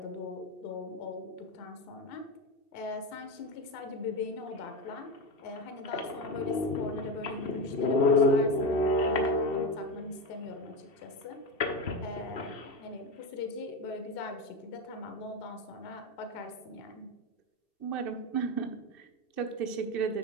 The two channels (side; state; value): right; late; 2.7 ms